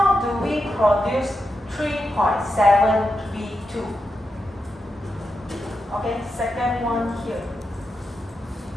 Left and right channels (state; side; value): normal; both; correlation 0.87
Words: do we produce 3.7V2? Okay, second one here.